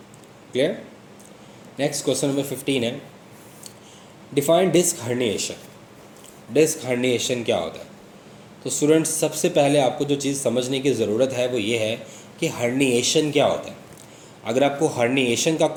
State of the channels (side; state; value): both; identical; correlation 1.00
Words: क्लियर। नेक्स्ट क्वेश्चन नंबर 15 है, define disc herniation. Disc herniation क्या होता है। तो स्टूडेंट्स सबसे पहले आपको जो चीज़ समझने की ज़रूरत है वो ये है कि हर्निएशन क्या होता है। अगर आपको हर्निएशन का